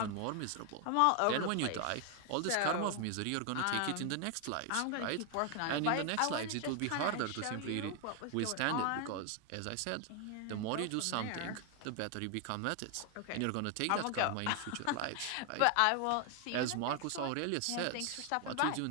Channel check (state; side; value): different; both; correlation 0.00